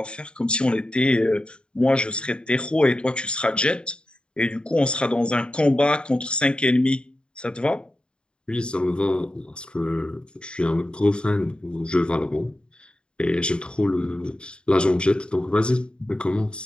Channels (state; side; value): late; right; 0.052 ms